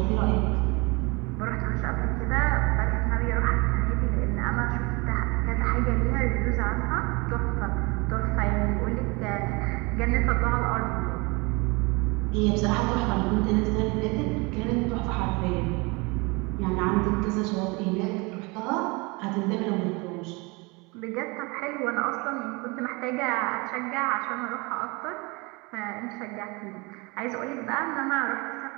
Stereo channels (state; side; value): quieter; left; 27.2 dB